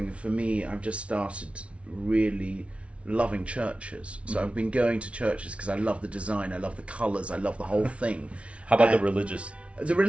for me. I've just started really loving churches. So I've been going to churches because I love the design, I love the colours, I love the whole thing. How about the religious? The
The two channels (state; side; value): late; left; 0.062 ms